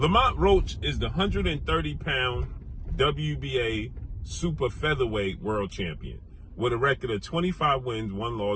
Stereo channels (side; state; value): both; identical; correlation 1.00